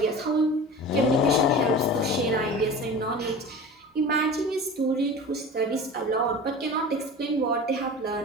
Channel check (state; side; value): normal; both; correlation 0.35